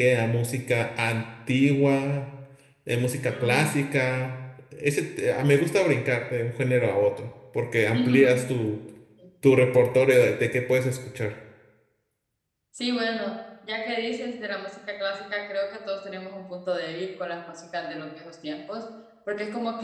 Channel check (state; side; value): identical; both; correlation 1.00